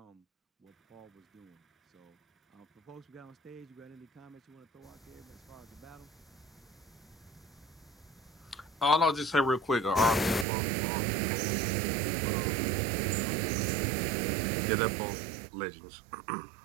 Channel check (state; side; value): drops out; left; at 10.5 s